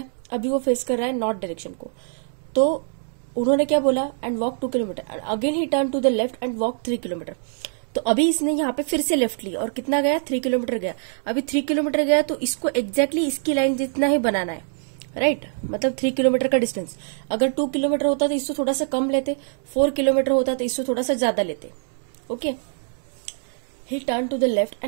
अभी वो फेस कर रहा है नॉर्थ डायरेक्शन को। तो उन्होंने क्या बोला, and walk 2 kilometre, again he turn to the left and walk 3 kilometre. तो अभी इसने यहाँ पे फिर से लेफ्ट ली और कितना गया, 3 किलोमीटर गया। अभी 3 किलोमीटर गया तो इसको एग्जैक्टली इसकी लाइन जितना ही बनाना है, राइट। मतलब 3 किलोमीटर का डिस्टेंस, अगर 2 किलोमीटर होता तो इससे थोड़ा सा कम लेते, 4 किलोमीटर होता तो इससे थोड़ा सा ज्यादा लेते। Okay, he turn to the left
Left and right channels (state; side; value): silent; left; 63 dB below the other